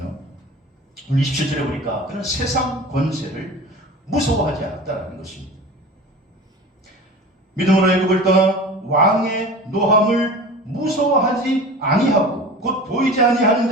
우리 27절에 보니까 그는 세상 권세를 무서워하지 않았다는 것입니다. 믿음으로 애굽을 떠나 왕의 노함을 무서워하지 아니하고 곧 보이지 아니하는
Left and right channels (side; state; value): both; normal; correlation 0.36